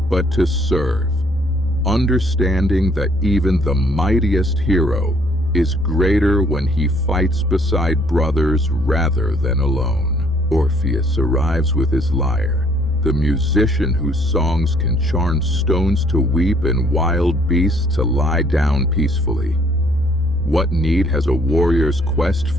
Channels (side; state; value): both; normal; correlation 0.62